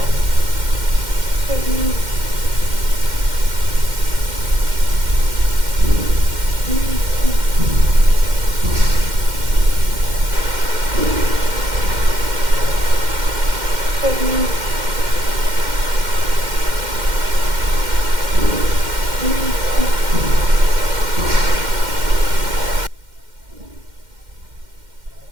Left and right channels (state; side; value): late; left; 2.1 ms